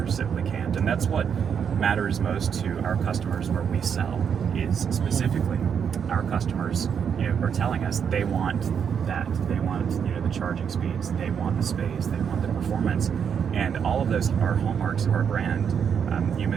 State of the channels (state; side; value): quieter; left; 7.4 dB